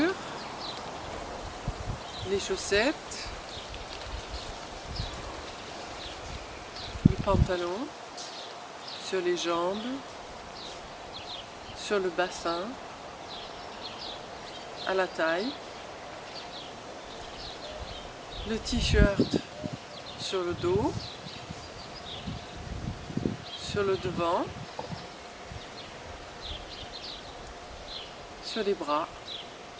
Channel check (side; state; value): both; identical; correlation 1.00